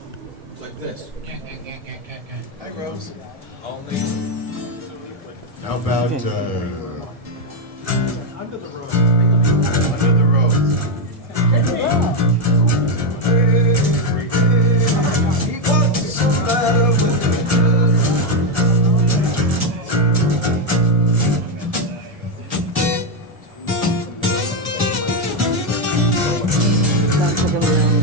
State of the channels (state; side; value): late; left; 1.7 ms